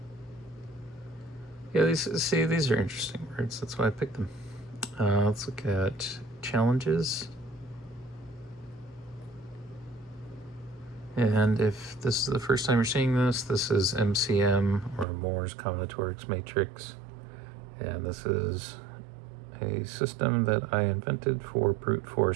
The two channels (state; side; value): drops out; left; at 15.1 s